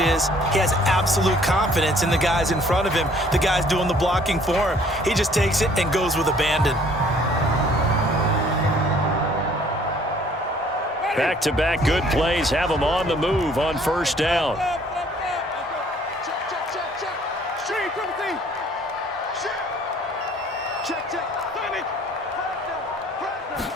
he has absolute confidence in the guys in front of him, the guys doing the blocking for him. He just takes it and goes with abandon. Back-to-back good plays have him on the move on 1st down.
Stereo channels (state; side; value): normal; both; correlation 0.58